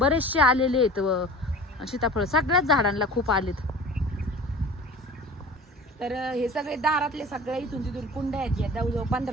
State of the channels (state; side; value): normal; both; correlation 0.40